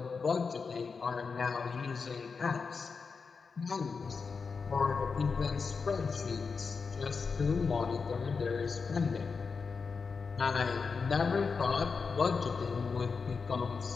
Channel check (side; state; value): right; quieter; 5.1 dB